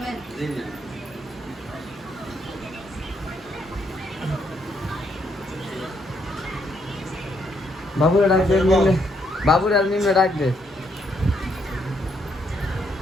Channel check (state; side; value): normal; both; correlation 0.74